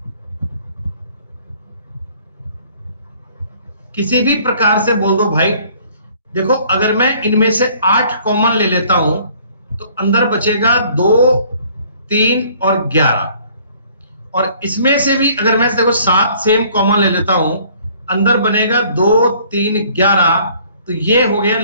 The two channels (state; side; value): inverted; both; correlation -0.57